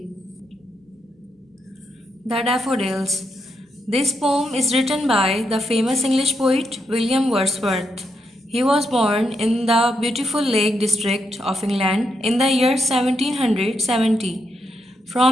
The Daffodils. This poem is written by the famous English poet William Wordsworth. He was born in the beautiful Lake District of England in the year 1770.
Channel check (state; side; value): normal; both; correlation 0.81